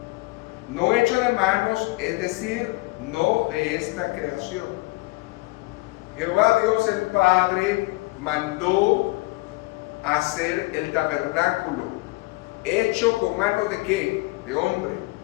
no hecho de manos, es decir, no de esta creación. Jehová Dios el Padre mandó hacer el tabernáculo, hecho con manos de ¿qué? De hombre.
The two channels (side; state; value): right; quieter; 23.4 dB